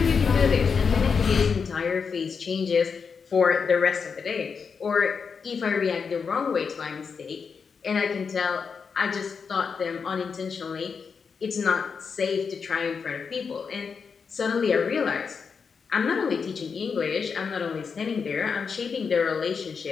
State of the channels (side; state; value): right; quieter; 5.8 dB